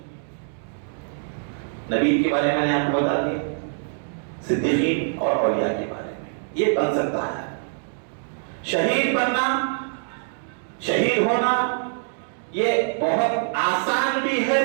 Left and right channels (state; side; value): silent; left; digital silence